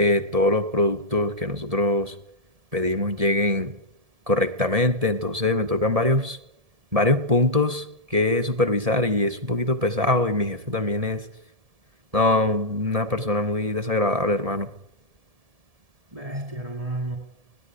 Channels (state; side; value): late; left; 1.7 ms